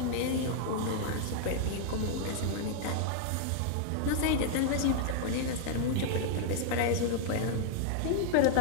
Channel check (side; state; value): both; different; correlation 0.00